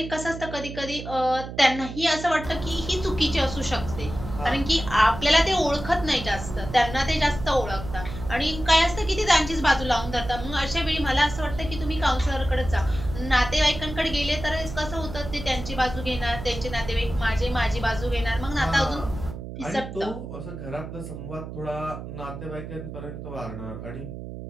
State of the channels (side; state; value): right; noise; hum, 10 dB below the sound